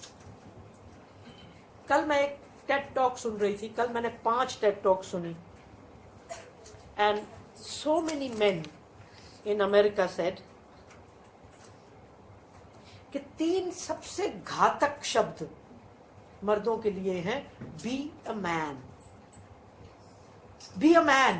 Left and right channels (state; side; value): identical; both; correlation 1.00